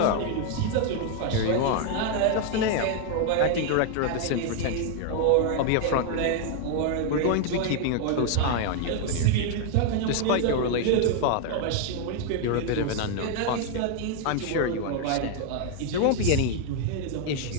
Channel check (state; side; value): different; both; correlation 0.00